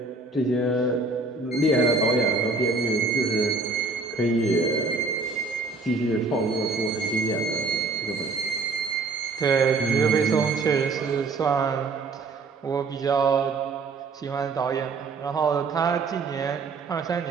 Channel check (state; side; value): quieter; left; 3.9 dB